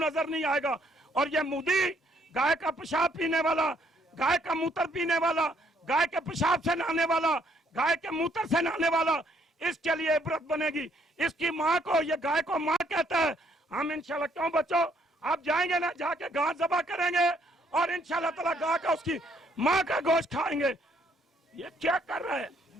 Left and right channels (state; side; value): normal; both; correlation 0.68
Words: नहीं आएगा। और ये मोदी गाय का पेशाब पीने वाला, गाय का मूत्र पीने वाला, गाय के पेशाब से नहाने वाला, गाय के मूत्र से नहाने वाला, इसके लिए इबरत बनेगी। इसकी माँ को, ये गाय को माँ कहता है। हम इंशाल्लाह, क्यों बच्चों आप जाएंगे ना, जाके गाय ज़बह करेंगे और इंशाल्लाह ताला गाय का, उसकी माँ का गोश्त खाएंगे। ये क्या कर रहा है,